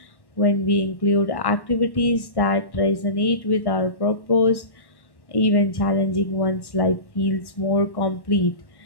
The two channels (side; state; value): right; late; 1.1 ms